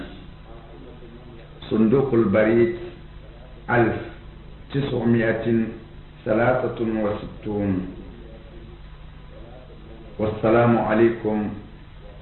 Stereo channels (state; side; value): identical; both; correlation 1.00